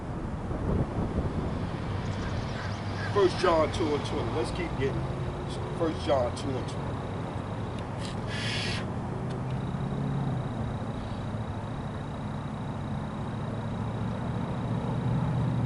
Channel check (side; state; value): both; identical; correlation 1.00